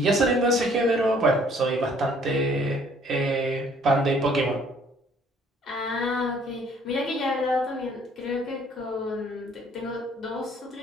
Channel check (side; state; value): both; normal; correlation 0.60